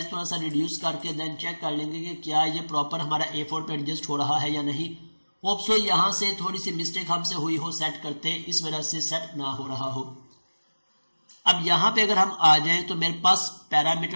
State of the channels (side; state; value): both; inverted; correlation -1.00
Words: थोड़ा सा रिड्यूस करके देन चेक कर लेंगे कि क्या ये प्रॉपर हमारा A4 पे एडजस्ट हो रहा है या नहीं। होप सो यहाँ से थोड़ी सी मिस्टेक हमसे हुई हो सेट करते, इस वजह से सेट ना हो रहा हो। अब यहाँ पे अगर हम आ जाएं तो मेरे पास